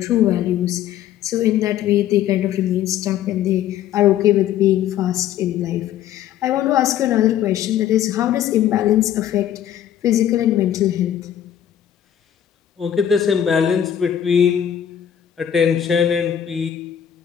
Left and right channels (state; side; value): quieter; right; 10.3 dB